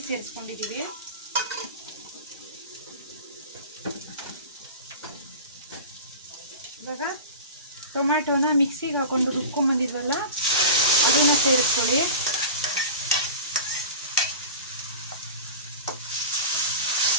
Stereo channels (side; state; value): both; inverted; correlation -0.32